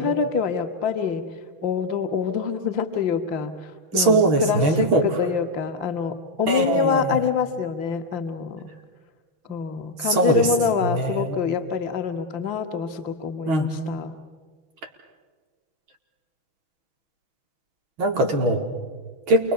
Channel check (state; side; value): late; left; 6.3 ms